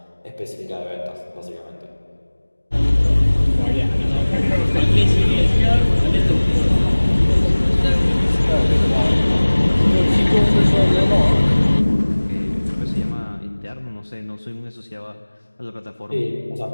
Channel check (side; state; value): both; inverted; correlation -1.00